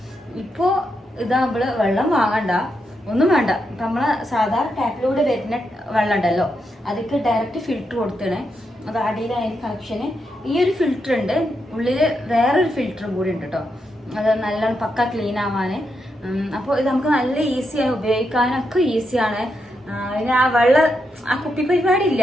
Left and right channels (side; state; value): both; normal; correlation 0.83